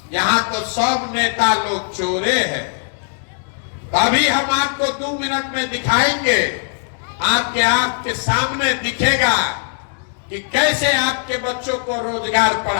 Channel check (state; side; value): silent; right; digital silence